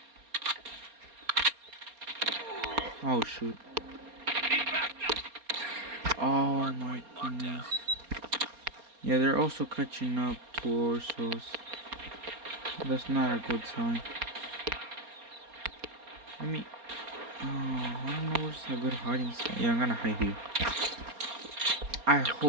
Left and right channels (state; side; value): late; left; 4.3 ms